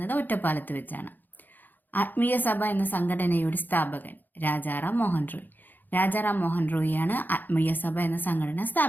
ഒറ്റപ്പാലത്ത് വെച്ചാണ്. ആത്മീയ സഭ എന്ന സംഘടനയുടെ സ്ഥാപകൻ രാജാറാം മോഹൻ റോയ്. രാജാറാം മോഹൻ റോയിയാണ് ആത്മീയ സഭ എന്ന സംഘടന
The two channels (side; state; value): right; late; 0.087 ms